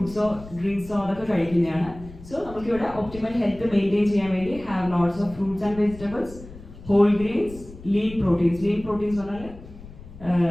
ഡ്രിങ്ക്സോ അതൊക്കെ കഴിക്കുന്നതാണ്. സോ നമുക്കിവിടെ ഒപ്റ്റിമൽ ഹെൽത്ത് മെയിൻറ്റെയിൻ ചെയ്യാൻ വേണ്ടി have lots of fruits and vegetables, whole grains, lean proteins. Lean proteins പറഞ്ഞാൽ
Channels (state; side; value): noise; left; rumble, 17 dB below the sound